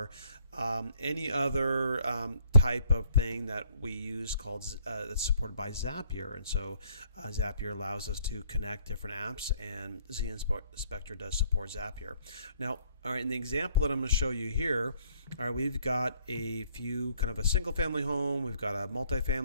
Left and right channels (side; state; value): both; inverted; correlation -0.62